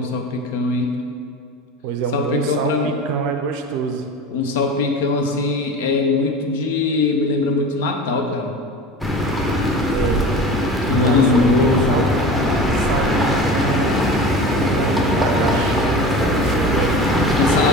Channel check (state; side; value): normal; both; correlation 0.34